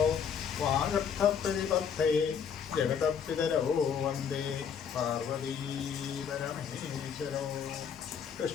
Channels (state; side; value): quieter; right; 7.2 dB